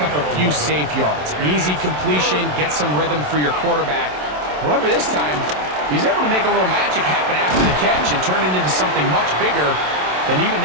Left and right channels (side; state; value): left; late; 27 ms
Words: up a few safe yards. An easy completion, get some rhythm for your quarterback. However, this time, he's able to make a little magic happen after the catch and turn it into something much bigger than even